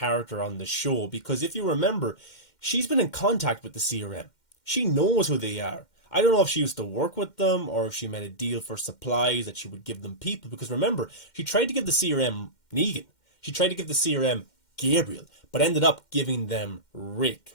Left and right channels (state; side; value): late; right; 2.1 ms